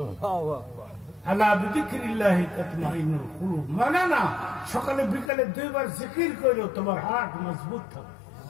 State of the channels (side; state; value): right; drops out; at 5.3 s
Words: আলা বিযিকরিল্লাহি তাতমাইন্নুল কুলুব। মানে না, সকালে বিকালে 2 বার জিকির করো, তোমার হার্ট মজবুত থাকবে।